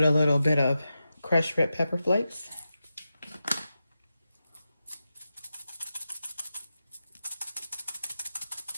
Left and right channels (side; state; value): both; inverted; correlation -0.91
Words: a little bit of crushed red pepper flakes.